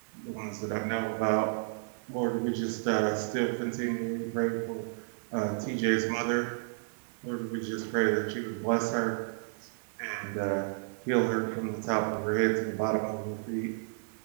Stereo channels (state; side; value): silent; left; digital silence